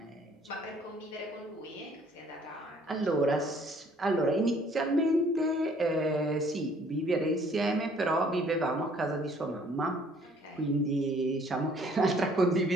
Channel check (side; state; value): both; normal; correlation 0.59